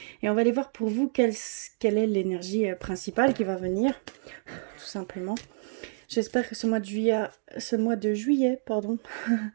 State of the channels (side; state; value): left; silent; digital silence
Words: Et on va aller voir pour vous quelle est l'énergie principale qui va venir, tout simplement. J'espère que ce mois de juillet,